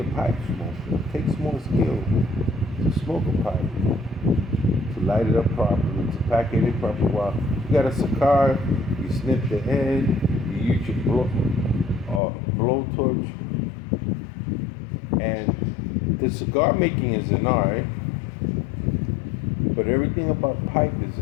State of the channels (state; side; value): drops out; right; at 12.2 s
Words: pipe smoker. It takes more skill to smoke a pipe, to light it up properly, to pack it in properly. While you got a cigar, you snip the end, you use your blowtorch, and the cigar making is an art, but everything about pipe is